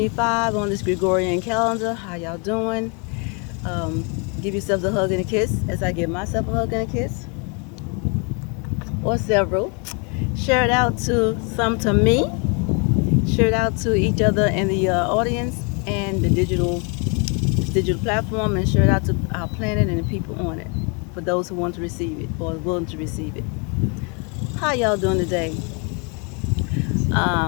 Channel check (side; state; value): right; quieter; 34.7 dB